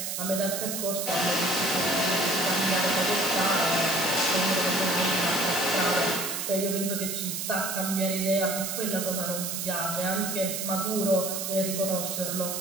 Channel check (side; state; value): right; noise; hiss, 3 dB below the sound